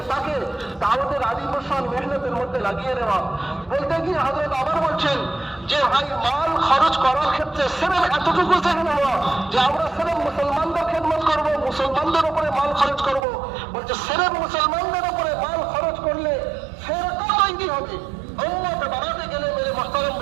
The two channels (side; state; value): left; drops out; at 13.2 s